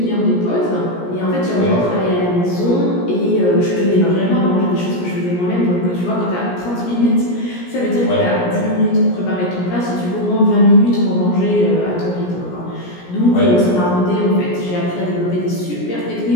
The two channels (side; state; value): right; late; 17 ms